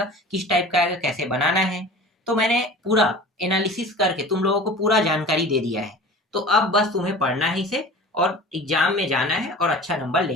किस टाइप का आएगा, कैसे बनाना है। तो मैंने पूरा एनालिसिस करके तुम लोगों को पूरा जानकारी दे दिया है। तो अब बस तुम्हें पढ़ना है इसे, और एग्जाम में जाना है और अच्छा नंबर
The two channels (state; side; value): normal; both; correlation 0.39